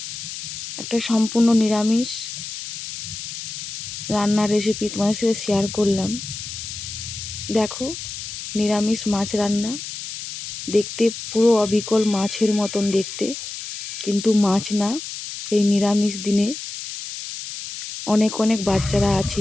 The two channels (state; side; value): noise; left; hiss, 8 dB below the sound